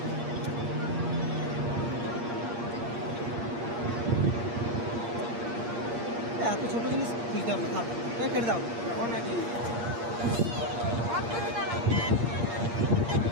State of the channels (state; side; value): late; left; 8.6 ms